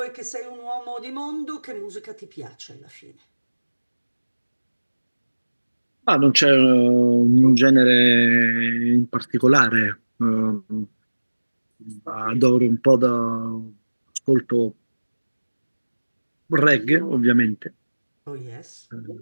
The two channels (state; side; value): inverted; both; correlation -1.00